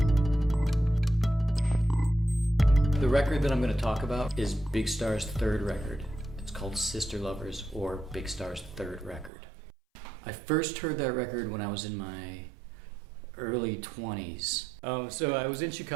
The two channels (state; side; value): drops out; left; at 9.3 s